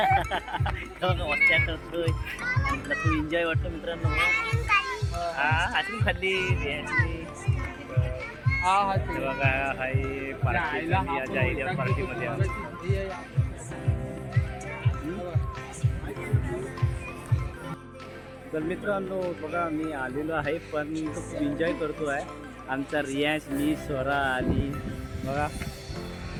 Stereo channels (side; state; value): both; identical; correlation 1.00